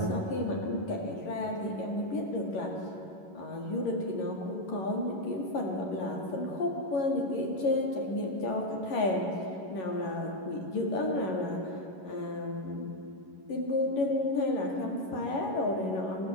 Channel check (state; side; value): late; right; 11 ms